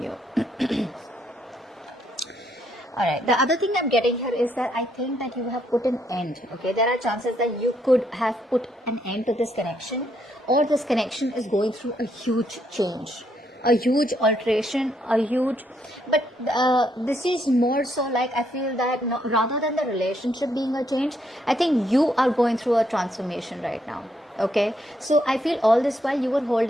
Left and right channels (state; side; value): normal; both; correlation 0.74